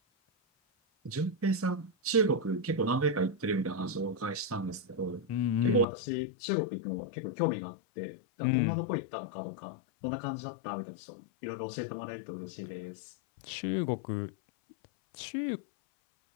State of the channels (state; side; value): drops out; right; at 5.9 s